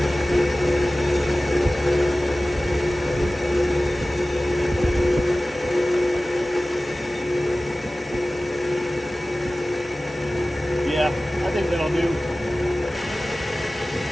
Yeah, I think that'll do.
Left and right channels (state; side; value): normal; both; correlation 0.97